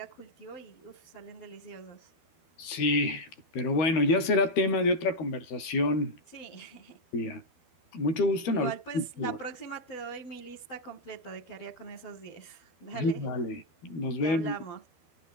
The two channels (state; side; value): late; right; 12 ms